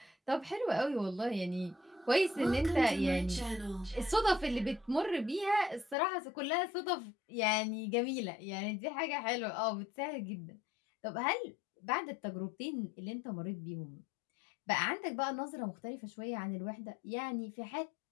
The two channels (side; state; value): right; drops out; at 6.0 s